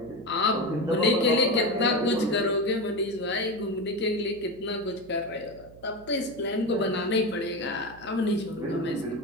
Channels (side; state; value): right; noise; hum, 21 dB below the sound